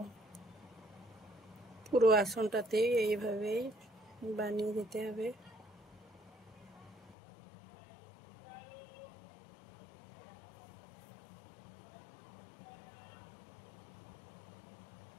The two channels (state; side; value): drops out; right; at 7.2 s